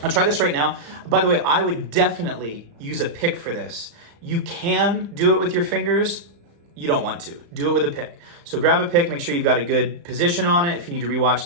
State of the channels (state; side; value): late; left; 35 ms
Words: I'll try this right now. By the way, I would definitely use a pick for this. You can do it with your fingers. You don't want to. Do it with a pick. So grab a pick, make sure you've got a good position on it. If you need to rewatch